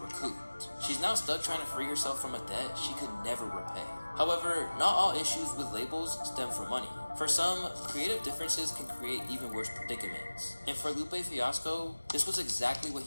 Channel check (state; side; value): inverted; both; correlation -1.00